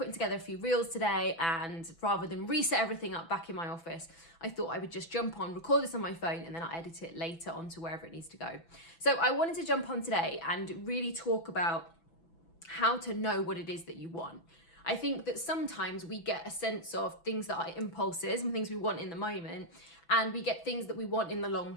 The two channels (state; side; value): late; right; 6.0 ms